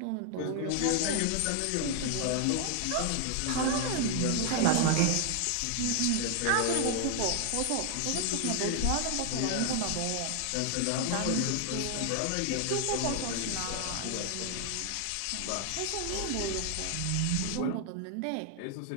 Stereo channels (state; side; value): different; both; correlation 0.00